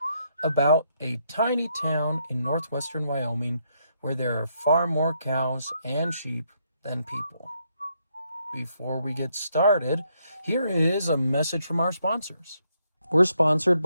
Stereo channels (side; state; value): both; inverted; correlation -0.76